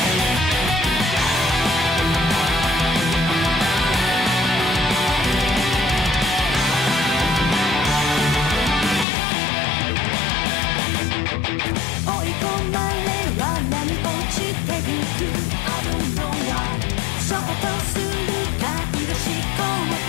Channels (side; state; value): right; drops out; at 9.1 s